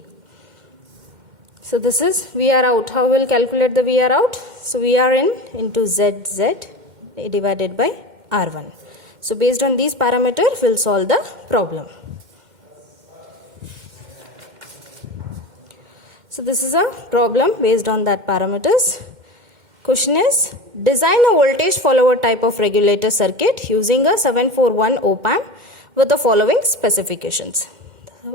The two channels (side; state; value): left; late; 2.1 ms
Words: So this is VR out. How will calculate the VR out? So VR in into ZZ divided by R1. So based on these parameters, we'll solve the problem. So this is a problem based on that parameters. Question is, design a voltage follower type of regulator circuit using a 741 op-amp with the following specifications.